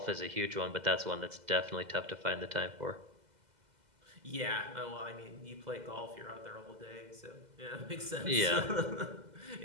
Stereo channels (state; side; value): late; left; 2.0 ms